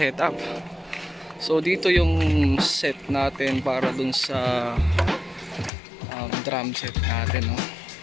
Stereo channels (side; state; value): right; drops out; at 5.7 s